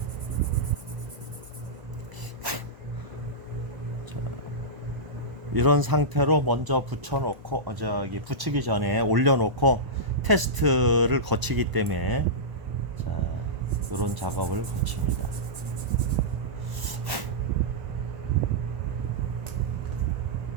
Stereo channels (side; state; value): left; late; 1.0 ms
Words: 이런 상태로 먼저 붙여놓고 저기 붙이기 전에 올려놓고 테스트를 거치기 때문에 자, 이런 작업을 거칩니다.